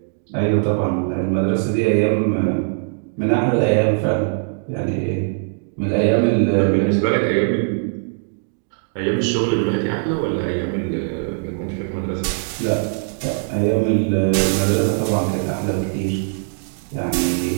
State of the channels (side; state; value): left; silent; digital silence